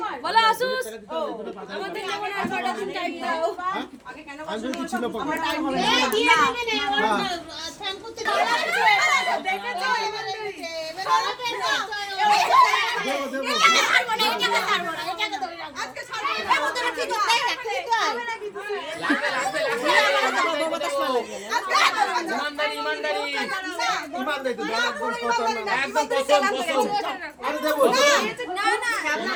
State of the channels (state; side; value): identical; both; correlation 1.00